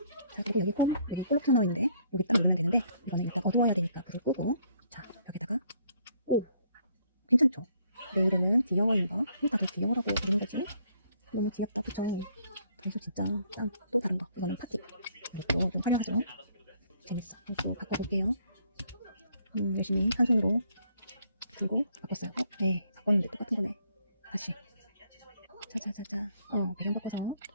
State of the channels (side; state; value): both; inverted; correlation -0.65